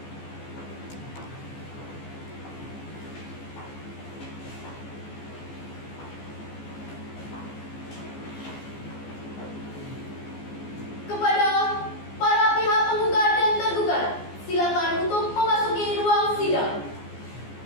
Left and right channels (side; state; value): right; late; 14 ms